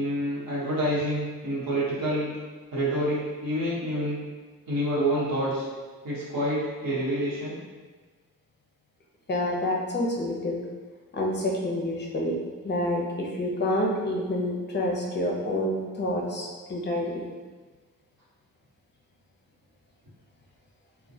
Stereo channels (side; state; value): both; normal; correlation 0.25